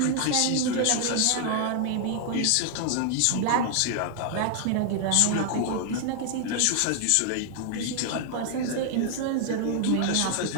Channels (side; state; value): both; different; correlation 0.00